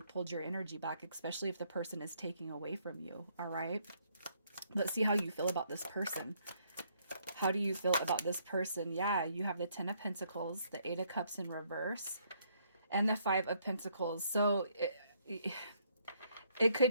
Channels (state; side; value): inverted; both; correlation -0.69